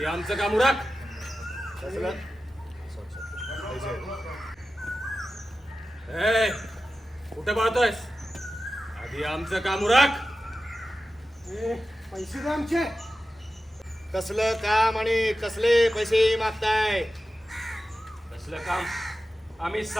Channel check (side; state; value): both; normal; correlation 0.93